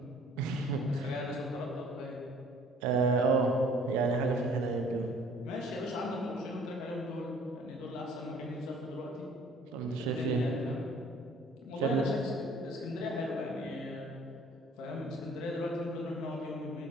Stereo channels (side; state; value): both; normal; correlation 0.55